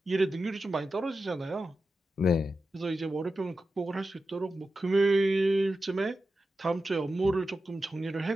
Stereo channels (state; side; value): normal; both; correlation 0.91